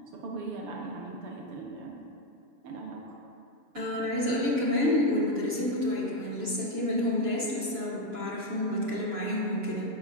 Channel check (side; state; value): left; late; 7.0 ms